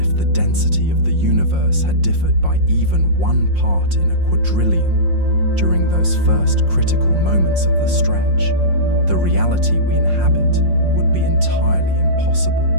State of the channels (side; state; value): left; late; 5.6 ms